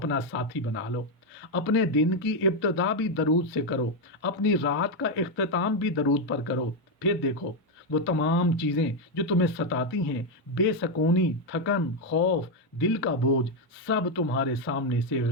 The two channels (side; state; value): both; normal; correlation 0.04